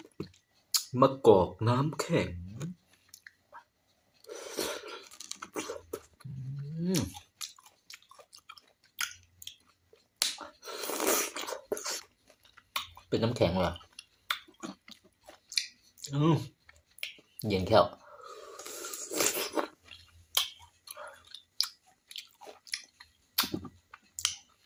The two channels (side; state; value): both; identical; correlation 1.00